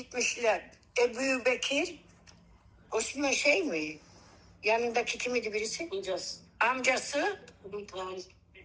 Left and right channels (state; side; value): identical; both; correlation 1.00